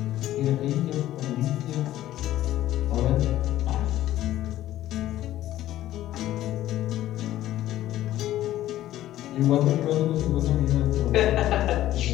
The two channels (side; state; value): right; quieter; 13.8 dB